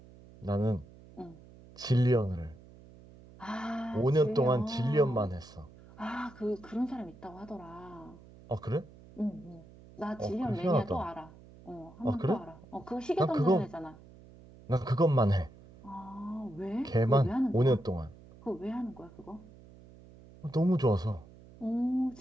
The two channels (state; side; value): noise; right; hum, 21 dB below the sound